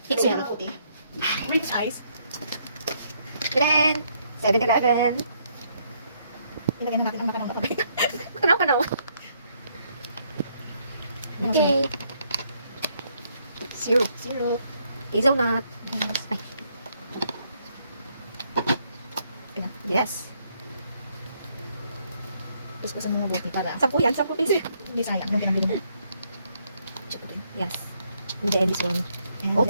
Mix Lagyan well. ng puti. Rich ice. Then, 7-Eleven. Ilagay na natin ang nakanaw na kape. Kanaw. Okay. Syrup. Syrup. Hazelnut. Yes. Ay. Ayan. Yes. Kuskusan mo mabuti para 10 yan. 10 piso. hindi sayang yung pinambili mo. Check ko din. Yes. And then this one. And Both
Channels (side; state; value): both; inverted; correlation -0.71